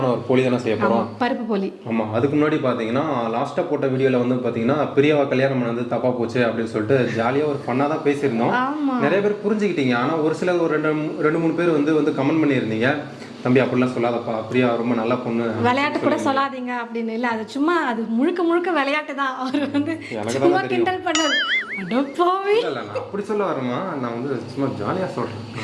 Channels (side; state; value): both; identical; correlation 1.00